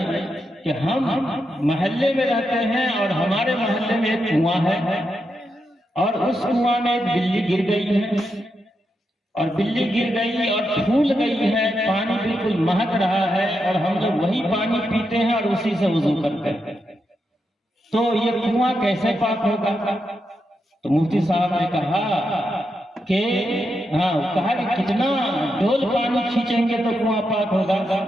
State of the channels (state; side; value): normal; both; correlation 0.85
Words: کہ ہم محلے میں رہتے ہیں اور ہمارے محلے میں ایک کنواں ہے اور اس کنواں میں ایک بلی گر گئی ہے اور بلی گر گئی اور پھول گئی ہے، پانی بالکل مہک رہا ہے اور ہم لوگ وہی پانی پیتے ہیں اور اسی سے وضو کرتے ہیں، تو یہ کنواں کیسے پاک ہوگا؟ تو مفتی صاحب نے کہا کہ کہا کہ کتنا ڈول پانی کھینچیں گے تو کنواں پاک ہوگا؟